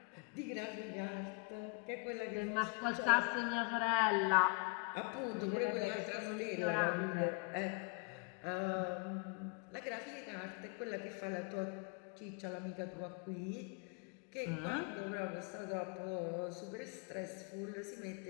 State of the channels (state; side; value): quieter; right; 30.9 dB